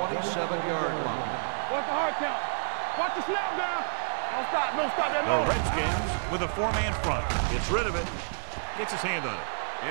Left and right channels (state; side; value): silent; left; digital silence